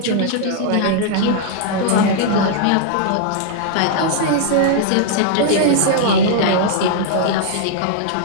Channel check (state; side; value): different; both; correlation -0.01